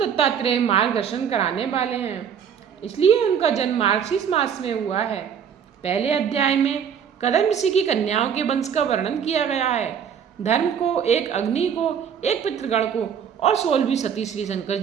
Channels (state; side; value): quieter; left; 7.9 dB